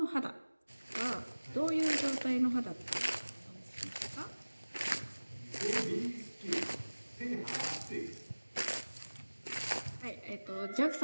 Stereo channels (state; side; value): inverted; both; correlation -1.00